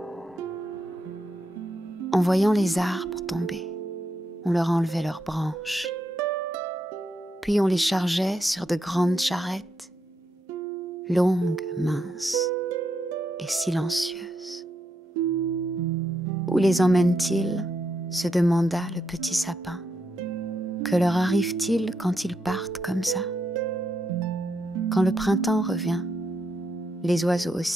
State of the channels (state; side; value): normal; both; correlation 0.81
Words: En voyant les arbres tomber, on leur enlevait leurs branches. Puis on les chargeait sur de grandes charrettes, longues, minces et silencieuses. Où les emmène-t-il ? Se demanda le petit sapin. Que leur arrive-t-il quand ils partent comme ça ? Quand le printemps revient, les oiseaux